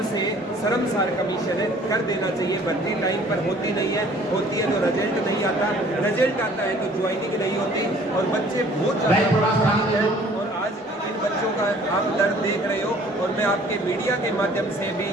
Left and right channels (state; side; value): normal; both; correlation 0.54